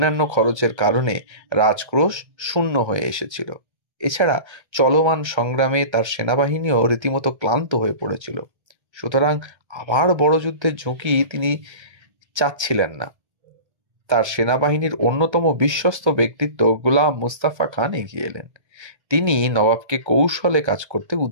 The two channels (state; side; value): late; left; 1.3 ms